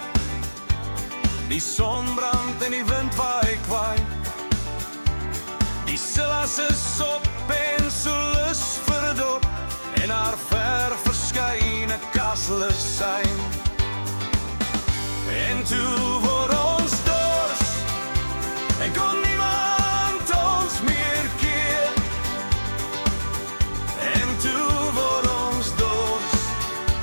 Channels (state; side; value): inverted; both; correlation -1.00